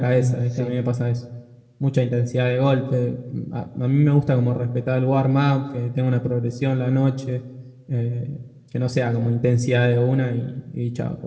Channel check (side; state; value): both; identical; correlation 1.00